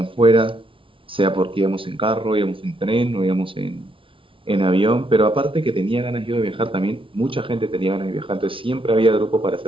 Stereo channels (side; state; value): left; late; 0.25 ms